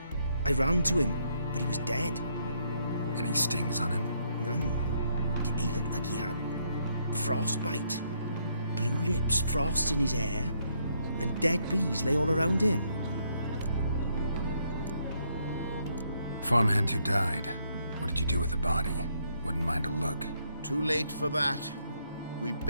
I ran to him, but he was dead. Any stings on him? None. He looked like he had frostbite. Blue lips, frost in his hair, and dead bees lay all around him. Farmhand who died. What did you do with the body? Wouldn't mind a look. Too late for that. We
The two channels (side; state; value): both; inverted; correlation -0.73